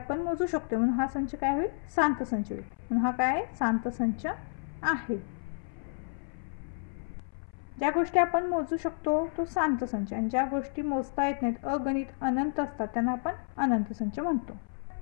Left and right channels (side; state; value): right; silent; 57 dB below the other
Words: मोजू शकतो. म्हणून हा संच काय होईल शांत संच होईल. म्हणून हा काय शांत संच आहे. ज्या गोष्टी आपण मोजू शकतो तो शांत संच, आणि ज्या गोष्टी मोजता येत नाहीत अगणित अनंत असतात त्यांना आपण अनंत संच म्हणतो.